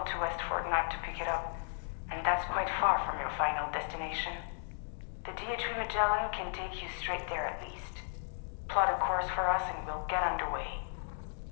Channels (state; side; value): silent; right; digital silence